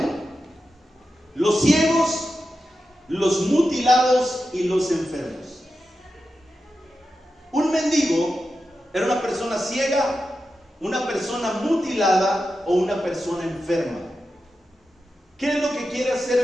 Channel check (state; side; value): normal; both; correlation 0.90